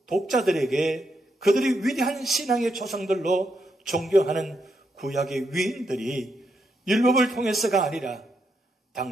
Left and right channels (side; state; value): both; normal; correlation 0.80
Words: 독자들에게 그들이 위대한 신앙의 조상들로 존경하는 구약의 위인들이 율법을 통해서가 아니라